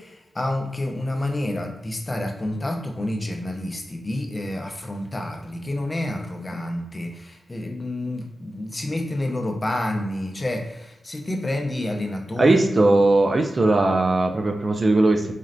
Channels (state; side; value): normal; both; correlation 0.93